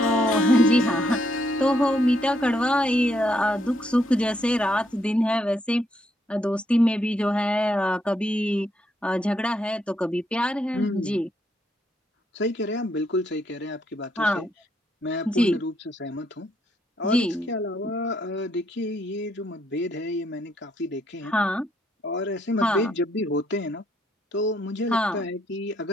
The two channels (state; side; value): normal; both; correlation 0.74